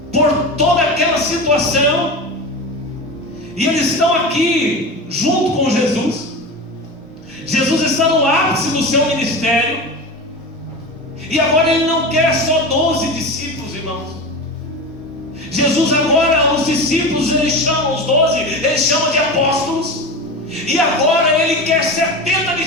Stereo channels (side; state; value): both; normal; correlation 0.27